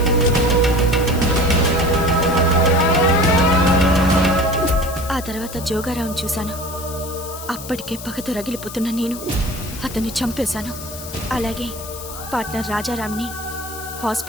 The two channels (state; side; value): noise; left; hiss, 12 dB below the sound